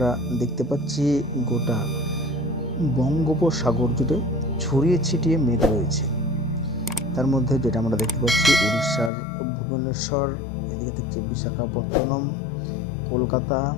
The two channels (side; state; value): right; drops out; at 9.1 s